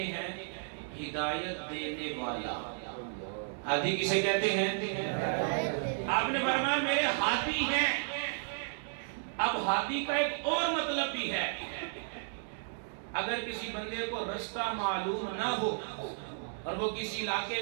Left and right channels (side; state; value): left; silent; digital silence